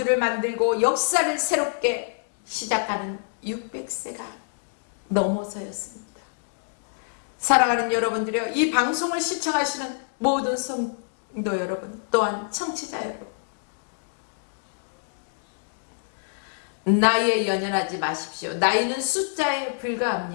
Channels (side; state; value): right; silent; digital silence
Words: 만들고 역사를 새롭게 시작하는 600세가 넘어서였습니다. 사랑하는 여러분들이요, 이 방송을 시청하시는 모든 성도 여러분, 또한 청취자 여러분, 나이에 연연하지 마십시오. 나이는 숫자에